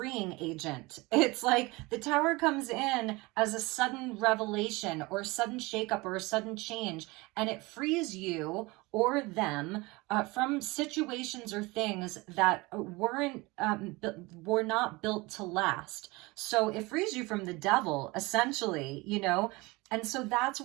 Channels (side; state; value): left; quieter; 23.4 dB